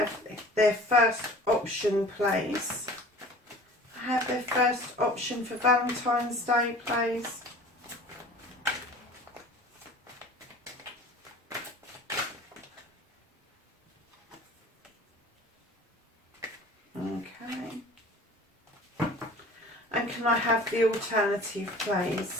their first option, please? Have their first option for Valentine's Day, please? Okay. And can I have the alternative,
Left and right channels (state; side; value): normal; both; correlation 0.44